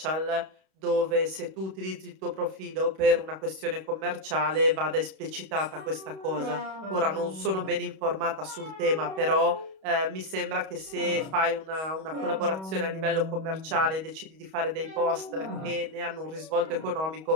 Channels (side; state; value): left; late; 31 ms